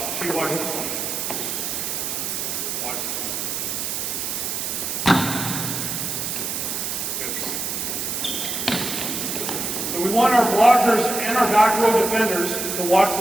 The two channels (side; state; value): right; noise; hiss, 2 dB below the sound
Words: she watch this one. Watch this one. Good. So we want our blockers and our back row defenders to watch